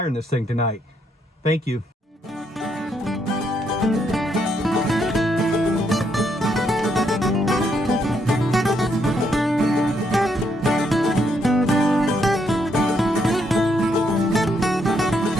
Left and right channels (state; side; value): normal; both; correlation 0.75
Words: in this thing tonight. Thank you.